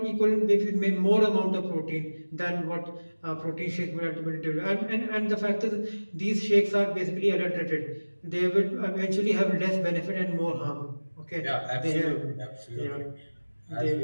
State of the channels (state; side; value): inverted; both; correlation -1.00